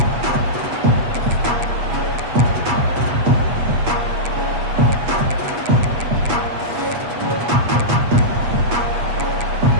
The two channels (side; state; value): left; late; 8.3 ms